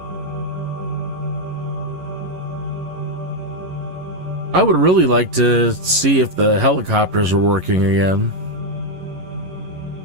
I would really like to see if the helicopters are working again.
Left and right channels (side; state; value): left; late; 11 ms